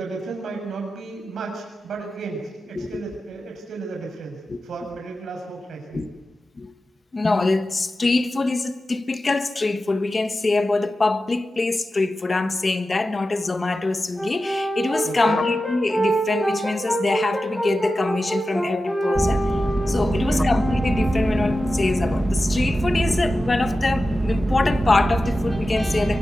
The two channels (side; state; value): both; normal; correlation 0.93